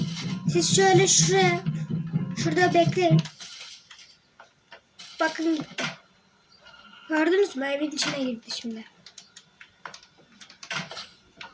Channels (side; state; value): both; identical; correlation 1.00